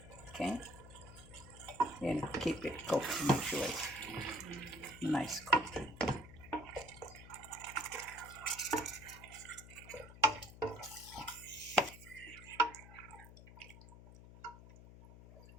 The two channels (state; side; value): noise; left; hum, 17 dB below the sound